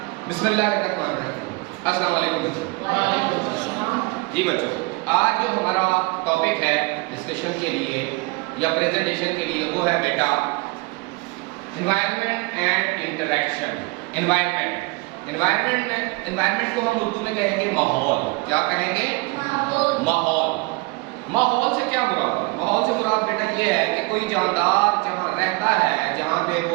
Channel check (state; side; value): quieter; left; 25.4 dB